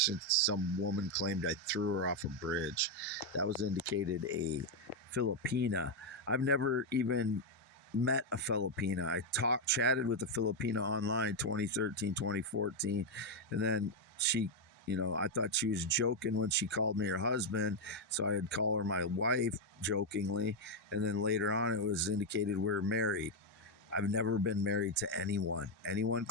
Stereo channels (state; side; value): normal; both; correlation 0.02